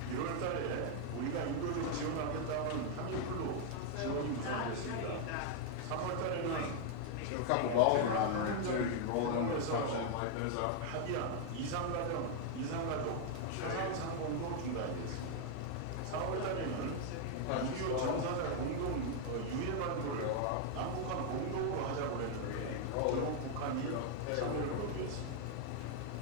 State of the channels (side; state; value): both; different; correlation 0.00